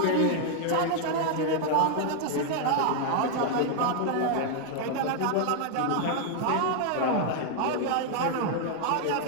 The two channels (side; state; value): both; different; correlation 0.00